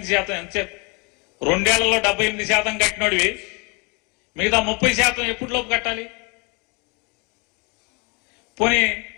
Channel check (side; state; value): right; quieter; 29.8 dB